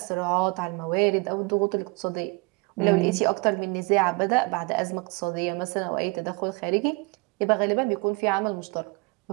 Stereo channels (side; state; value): left; quieter; 28.7 dB